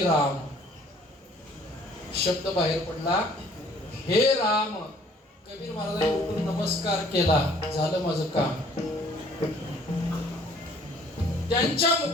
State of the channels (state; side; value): normal; both; correlation 0.57